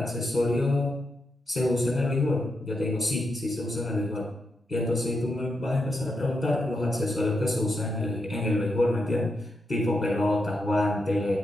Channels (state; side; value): normal; both; correlation 0.84